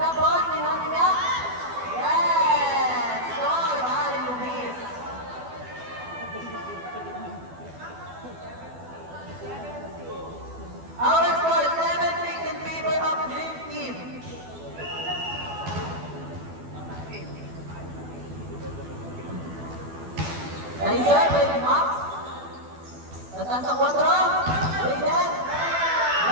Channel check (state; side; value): late; left; 12 ms